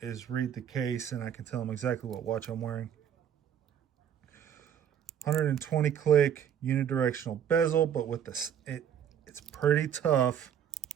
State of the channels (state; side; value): quieter; left; 9.2 dB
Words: read the case and I can tell them exactly what watch I'm wearing. 120 click unidirectional bezel, but with this, it's pretty tough